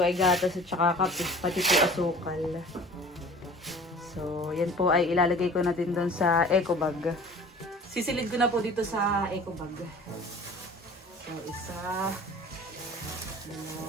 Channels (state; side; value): normal; both; correlation 0.45